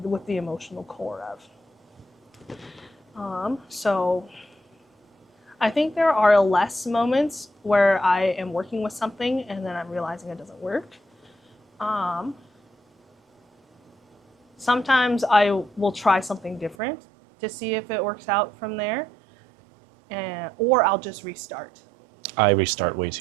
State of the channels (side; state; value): left; drops out; at 16.8 s